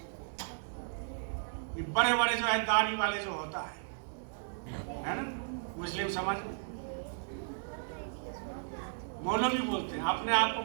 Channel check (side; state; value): left; silent; digital silence